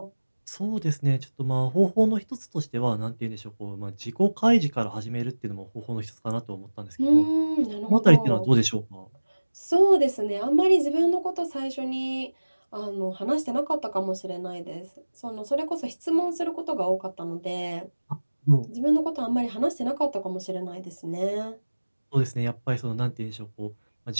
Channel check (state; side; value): inverted; both; correlation -1.00